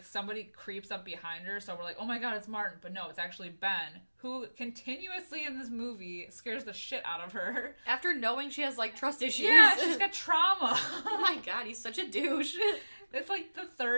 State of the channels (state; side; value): inverted; both; correlation -1.00